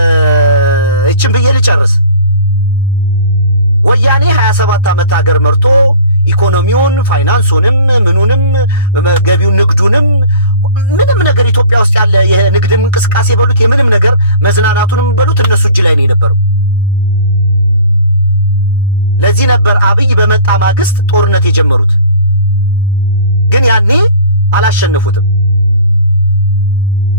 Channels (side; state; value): both; inverted; correlation -0.44